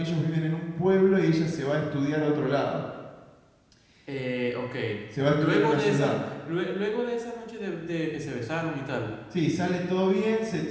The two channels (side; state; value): both; identical; correlation 1.00